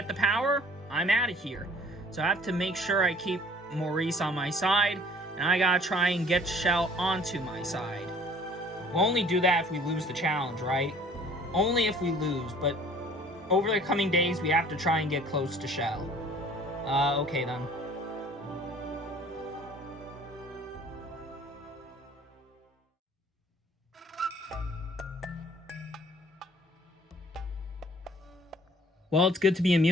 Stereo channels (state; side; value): normal; both; correlation 0.53